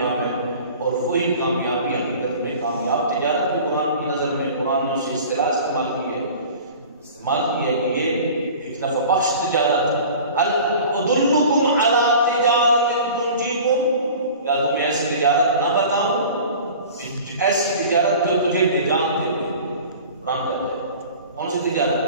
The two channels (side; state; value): both; inverted; correlation -0.41